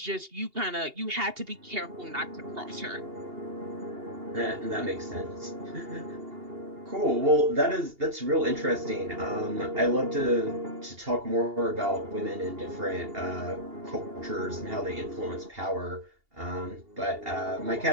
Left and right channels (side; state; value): left; late; 2.8 ms